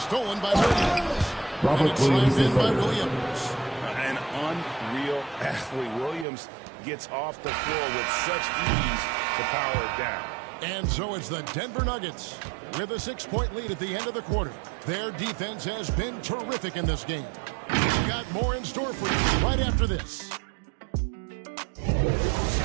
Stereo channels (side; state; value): left; drops out; at 6.2 s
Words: by Williams. And it's slammed in by Williams. An unreal athlete. Williams gets off the floor with such ease to power it down. And so it's the Denver Nuggets with a 6-point lead at the end of the quarter. Their defense has been terrific in this game. We've got more in store for you right after this.